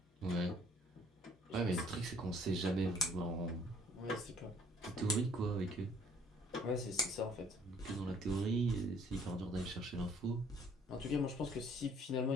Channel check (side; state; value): both; normal; correlation 0.58